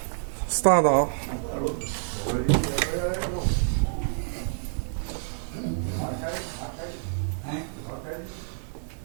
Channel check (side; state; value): left; silent; 60 dB below the other